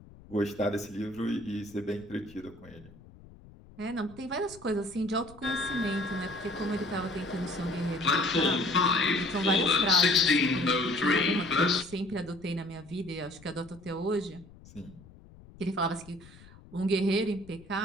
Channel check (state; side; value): noise; left; rumble, 22 dB below the sound